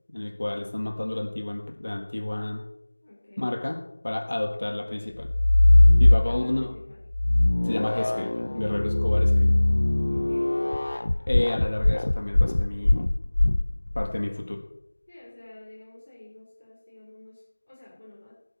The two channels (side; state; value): both; inverted; correlation -1.00